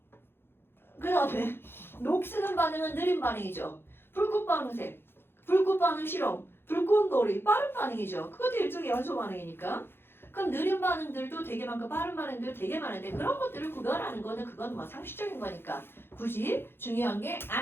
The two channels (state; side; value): late; right; 0.11 ms